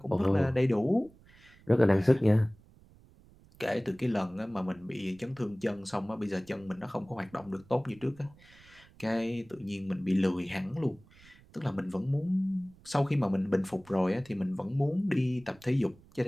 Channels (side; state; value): right; noise; rumble, 26 dB below the sound